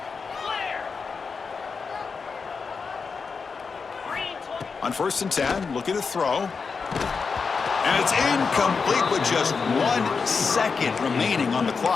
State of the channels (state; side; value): quieter; right; 5.1 dB